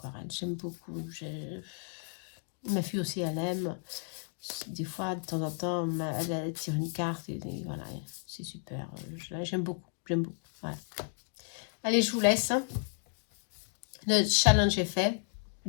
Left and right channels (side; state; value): right; silent; 56 dB below the other